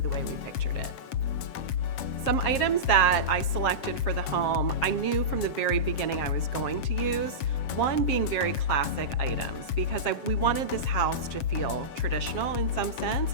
way we pictured it. Some items that I selected for the home, I knew from the very beginning I was going to use. One being very classic items, because we wanted this house to feel traditional in some sense,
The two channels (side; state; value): right; late; 7.4 ms